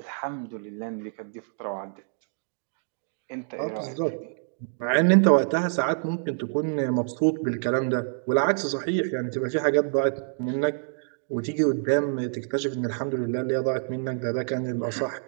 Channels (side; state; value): left; silent; digital silence